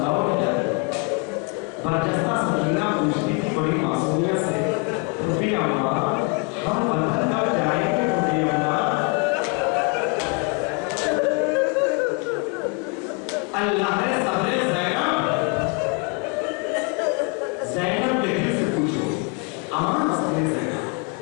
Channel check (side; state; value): right; quieter; 32.1 dB